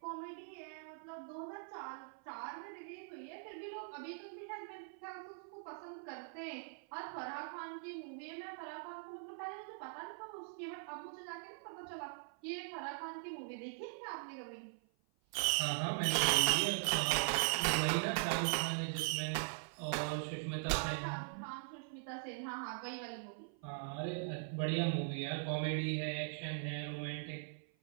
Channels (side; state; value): left; silent; 50 dB below the other